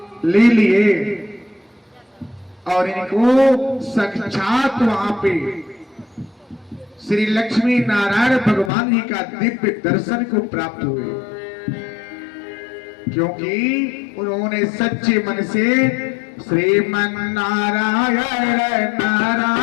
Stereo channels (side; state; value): right; drops out; at 8.7 s